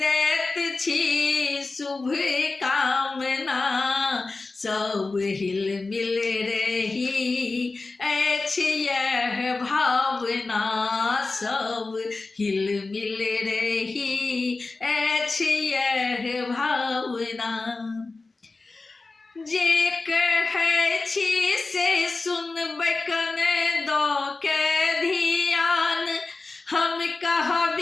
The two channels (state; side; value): quieter; right; 3.6 dB